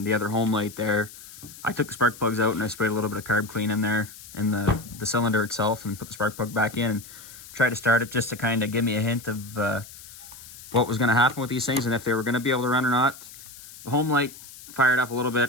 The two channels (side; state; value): left; noise; hiss, 17 dB below the sound